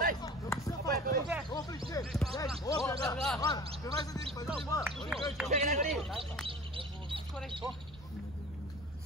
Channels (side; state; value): both; normal; correlation 0.40